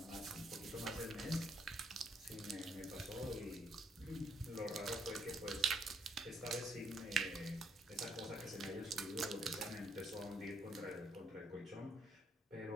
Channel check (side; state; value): both; normal; correlation 0.70